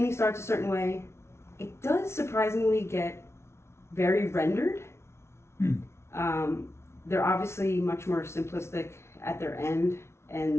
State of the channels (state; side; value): late; right; 0.13 ms